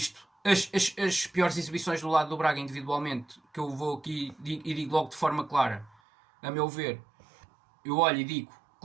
as piores exibições do lado do Braga individualmente, que eu vou aqui e digo logo de forma clara, a meu ver, eu olho e digo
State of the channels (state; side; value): drops out; left; at 6.0 s